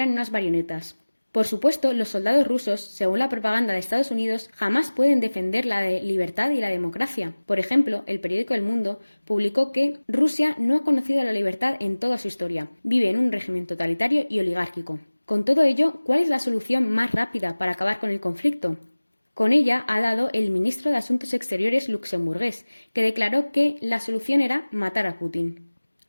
unas marionetas. Por supuesto, los soldados rusos, según la propaganda de Estados Unidos, jamás pueden defender la libertad y la democracia. Por ejemplo, el periódico El Mundo publicó que Rusia no ha conocido la libertad en toda su historia. Vive en un régimen totalitario y oligárquico. Con todo ello, ¿cuál es la solución más rápida para acabar con el conflicto? Con ella ha dado el ministro de Asuntos Exteriores luxemburgués, que declaró que la solución era matar a Putin.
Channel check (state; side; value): inverted; both; correlation -1.00